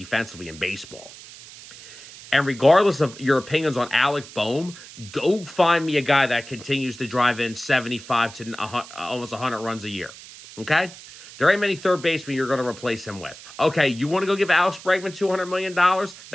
in baseball. And regardless of your opinions on Alec Boehm, go find me a guy that continues to drive in 75 to almost 100 runs a year. Okay? There ain't many third basemen you're going to replace him with. Okay, you want to go give Alex Bregman $200 million?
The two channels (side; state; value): right; noise; hiss, 17 dB below the sound